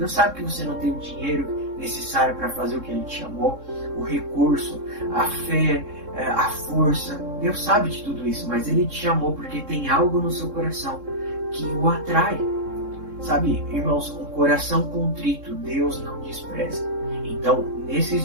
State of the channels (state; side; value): late; left; 3.7 ms